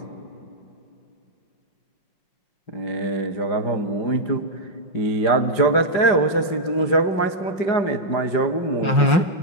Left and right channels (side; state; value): right; late; 5.5 ms